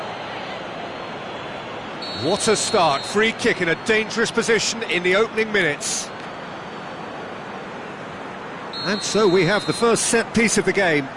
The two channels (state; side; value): identical; both; correlation 1.00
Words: What a start. Free kick in a dangerous position in the opening minutes. And so we have the first set piece of the game.